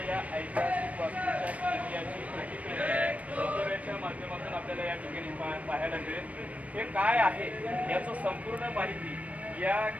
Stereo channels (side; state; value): left; late; 0.067 ms